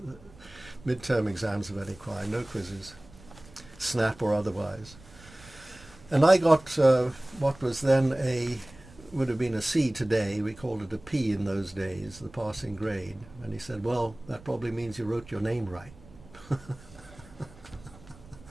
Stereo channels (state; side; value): noise; right; rumble, 22 dB below the sound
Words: midterm exams of any kind, no quizzes, snap or otherwise. And I got what was then would have been a C today. We called it a P in those days, the passing grade. And he said, well, that probably means you wrote your name right.